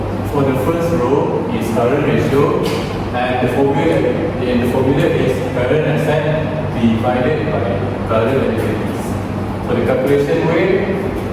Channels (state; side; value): identical; both; correlation 1.00